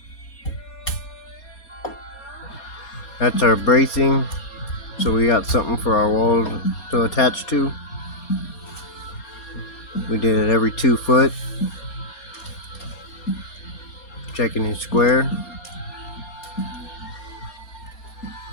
That's our bracing. So we got something for our wall to attach to. We did it every 2 foot. Checking it square.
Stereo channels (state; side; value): late; right; 4.3 ms